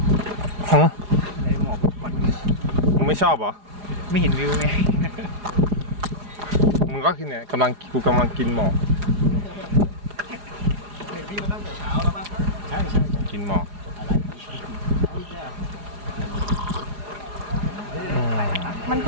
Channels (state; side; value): late; left; 4.9 ms